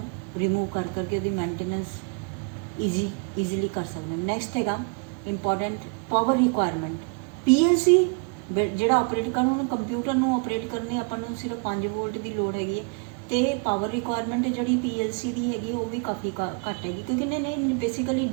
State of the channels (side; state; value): left; quieter; 38.0 dB